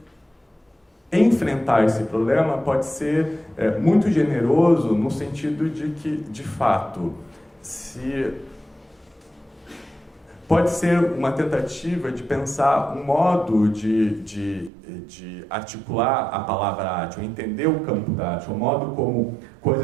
enfrentar esse problema pode ser muito generoso no sentido de que, de fato, pode ser uma tentativa de pensar um modo de articular a palavra arte, ou entender o campo da arte, o modo como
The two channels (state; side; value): drops out; left; at 14.7 s